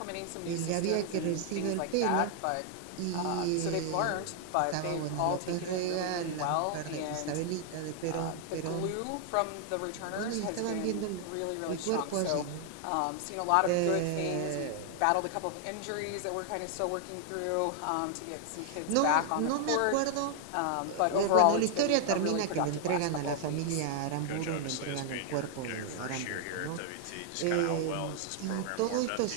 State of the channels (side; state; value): both; different; correlation 0.00